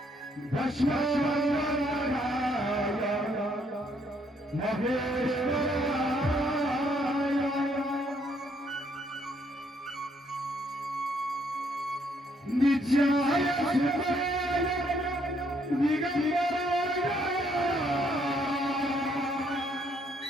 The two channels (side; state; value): both; normal; correlation 0.70